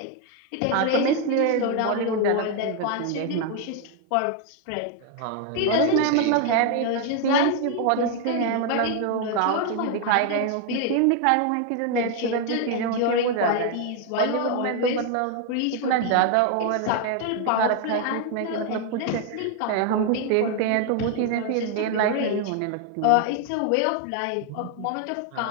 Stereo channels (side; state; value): both; different; correlation 0.01